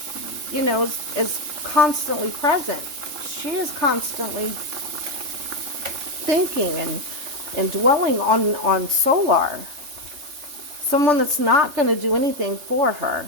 is constantly present. She is constantly thinking and dwelling on Solar. Someone that's not going to do anything for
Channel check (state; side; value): late; left; 3.4 ms